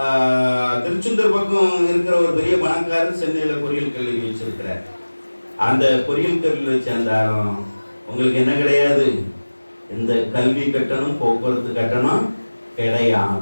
திருச்செந்தூர் பக்கம் இருக்கிற ஒரு பெரிய பணக்காரர் சென்னையில் பொறியியல் கல்லூரி வச்சிருக்கிறார். அந்த பொறியியல் கல்லூரியை சேர்ந்தாலும் உங்களுக்கு என்ன கிடையாது, இந்த கல்வி கட்டணம் போக்குவரத்து கட்டணம்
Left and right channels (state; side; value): inverted; both; correlation -1.00